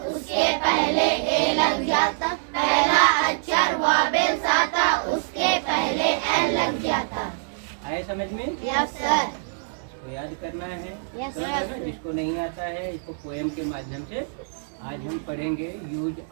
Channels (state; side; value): silent; left; digital silence